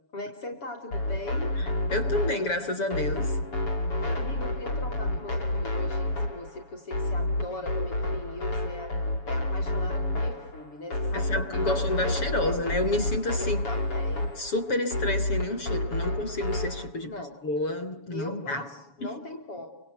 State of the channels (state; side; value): late; right; 7.1 ms